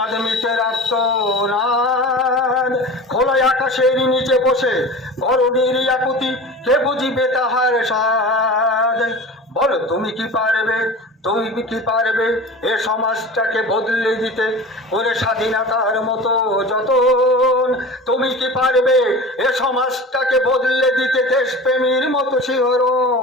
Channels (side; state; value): both; normal; correlation 0.35